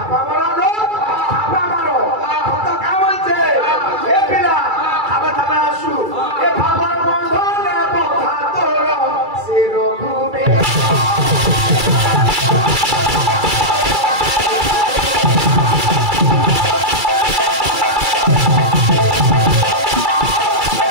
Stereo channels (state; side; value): late; left; 2.3 ms